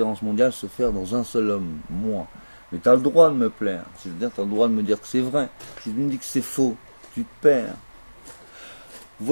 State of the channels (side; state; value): both; inverted; correlation -1.00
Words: mondiales se faire dans un seul homme, moi. Mais tu as le droit de me plaire. C'est-à-dire, tu as le droit de me dire que c'est vrai. Si tu me dis que c'est faux, tu te perds.